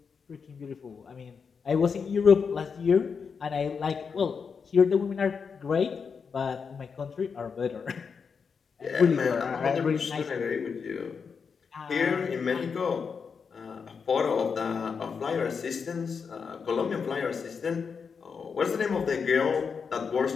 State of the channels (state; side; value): quieter; right; 5.9 dB